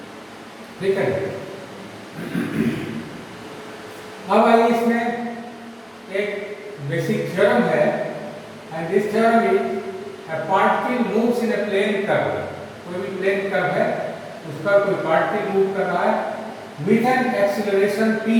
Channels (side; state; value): both; identical; correlation 1.00